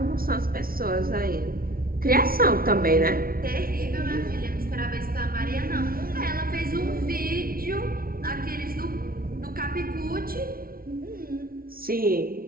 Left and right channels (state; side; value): late; left; 0.43 ms